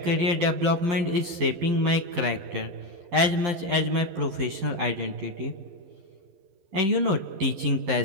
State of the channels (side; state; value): left; late; 12 ms